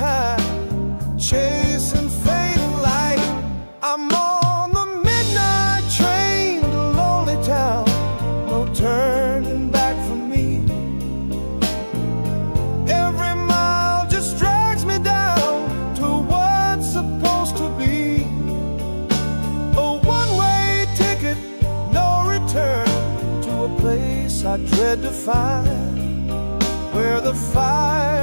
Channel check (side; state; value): both; inverted; correlation -1.00